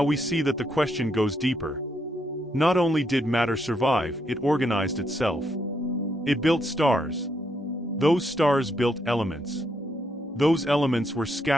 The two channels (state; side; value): normal; both; correlation 0.77